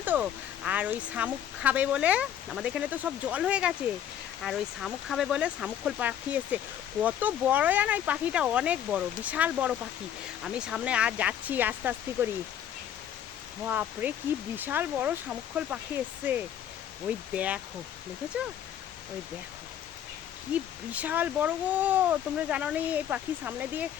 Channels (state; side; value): quieter; right; 10.1 dB